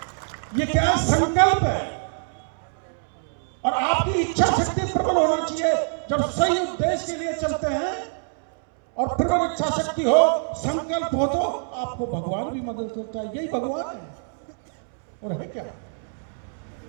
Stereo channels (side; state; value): left; silent; 62 dB below the other